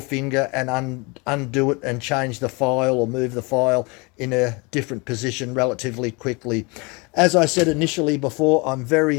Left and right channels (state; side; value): quieter; right; 28.4 dB